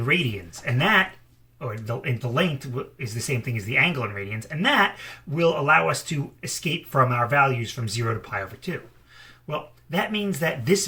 radians. And that, or the length is the same thing as the angle in radians, and that will allow us to escape from our values from 0 to π/2. Well, that means that this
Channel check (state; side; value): identical; both; correlation 1.00